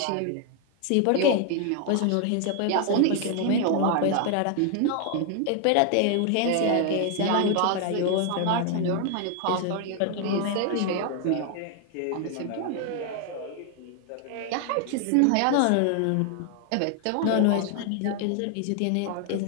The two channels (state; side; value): different; both; correlation 0.00